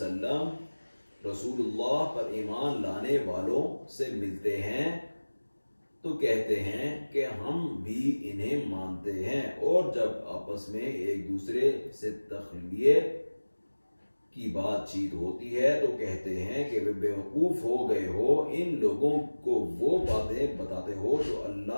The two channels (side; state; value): both; inverted; correlation -1.00